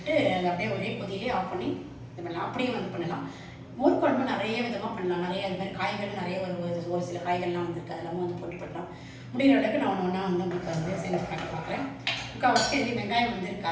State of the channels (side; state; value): both; identical; correlation 1.00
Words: அதை அப்படியே ஒரே கொதியிலே ஆஃப் பண்ணி இது பண்ணலாம். அப்படியே வந்து பண்ணலாம். மோர் குழம்பு நிறைய விதமாக பண்ணலாம். நிறைய அது மாதிரி காய்கள் நிறைய ஒரு சில காய்கள்லாம் வந்துருக்கு. அதெல்லாம் வந்து போட்டு பண்ணலாம். முடிகிற அளவுக்கு நான் ஒன்றா வந்து உங்களுக்கு வந்து செஞ்சு காட்ட பார்க்குறேன். முக்கால்வாசி எதுவும் வெங்காயம் வந்து